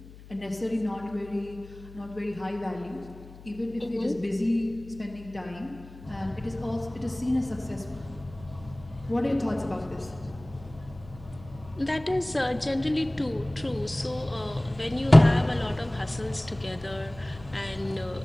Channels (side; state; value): left; noise; hum, 18 dB below the sound